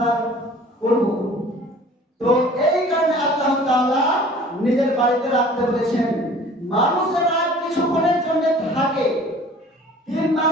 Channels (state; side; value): normal; both; correlation 0.48